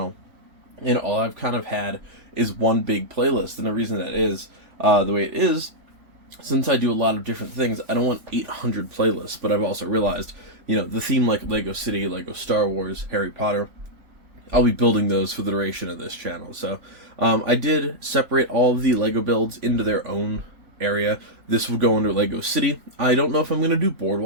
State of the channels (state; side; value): late; left; 3.4 ms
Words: and all I've kind of had is one big playlist. And the reason that is the way it is, since I do a lot of different things, I don't want 800 playlists. But I've also realized, you know, the theme like Lego City, Lego Star Wars, Harry Potter, I'll be building those for the duration of this channel. So I did separate all of the Lego builds into their own area. This will go under Lego City. I don't know if I'm going to do